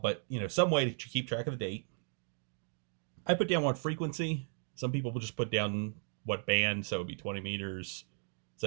some way to keep track of the date. I put down what frequency. Some people will just put down what band, so it'd be 20 meters,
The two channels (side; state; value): left; silent; 54 dB below the other